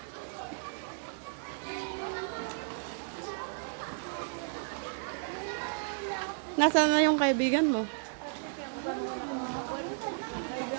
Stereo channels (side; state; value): left; silent; digital silence